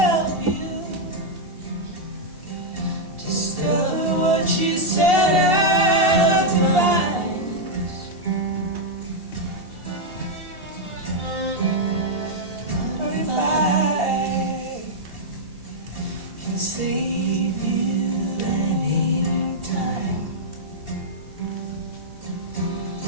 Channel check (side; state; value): left; late; 2.8 ms